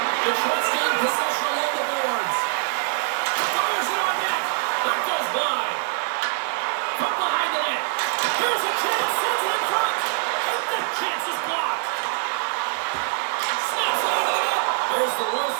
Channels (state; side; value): silent; left; 63 dB below the other